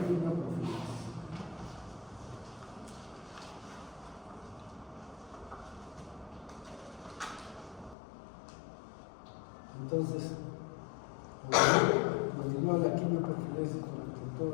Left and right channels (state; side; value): drops out; right; at 8.0 s